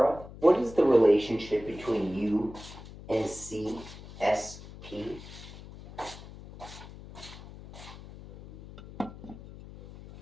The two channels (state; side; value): noise; left; hum, 16 dB below the sound